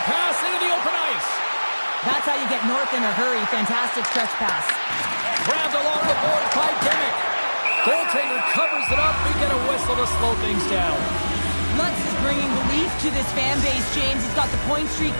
pass into the open ice. That's how you get north in a hurry. Fantastic stretch pass. Grabbed along the board by Dimmick. Goaltender covers it up. We get a whistle to slow things down. Lutz is bringing belief to this fan base, James. He's got the point streak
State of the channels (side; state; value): both; inverted; correlation -1.00